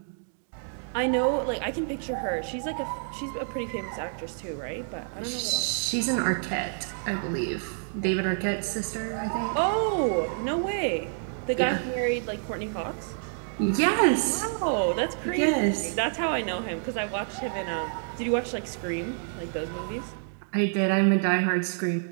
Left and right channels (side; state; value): left; silent; digital silence